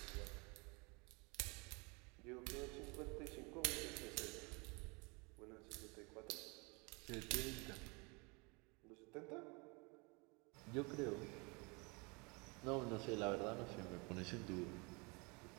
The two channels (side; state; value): left; quieter; 29.5 dB